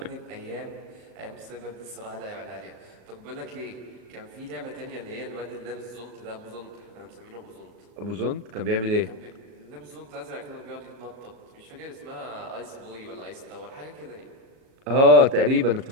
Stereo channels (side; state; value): left; late; 37 ms